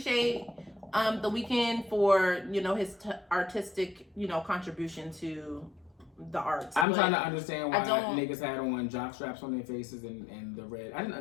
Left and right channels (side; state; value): right; drops out; at 6.9 s